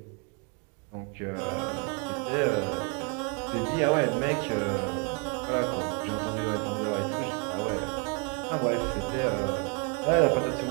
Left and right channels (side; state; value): left; quieter; 33.9 dB